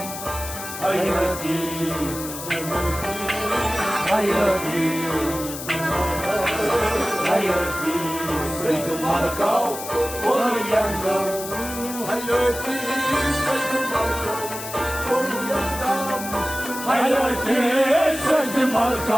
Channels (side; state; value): left; noise; hiss, 9 dB below the sound